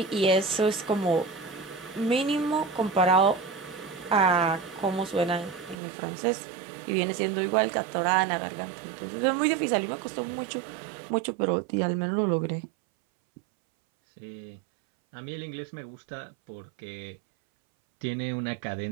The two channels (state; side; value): drops out; left; at 5.8 s